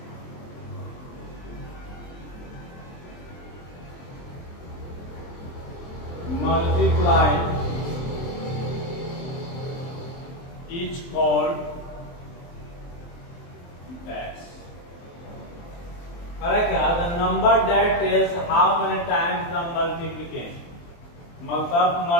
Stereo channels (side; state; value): right; late; 23 ms